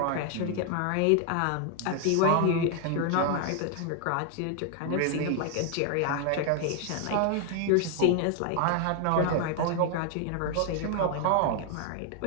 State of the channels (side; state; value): both; different; correlation 0.00